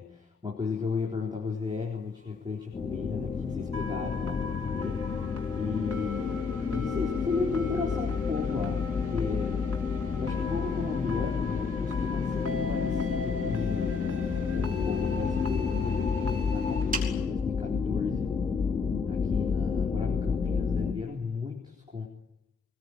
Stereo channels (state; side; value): quieter; right; 4.9 dB